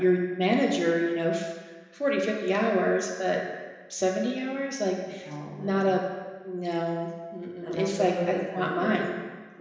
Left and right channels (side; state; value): both; identical; correlation 1.00